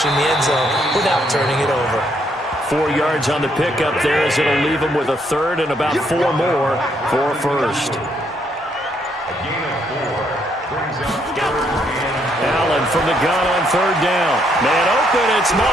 the end zone without turning it over. 4 yards on the pickup there as it'll leave them with a third and about 4 more for a first. Allen from the gun on third down. Man open, it's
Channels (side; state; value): both; normal; correlation 0.72